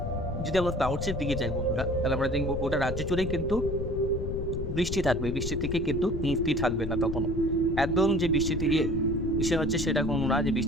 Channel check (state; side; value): noise; left; rumble, 4 dB below the sound